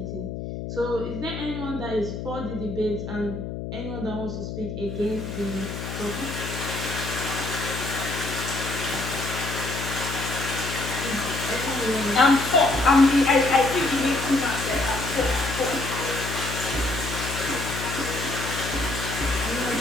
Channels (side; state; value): left; noise; hum, 6 dB below the sound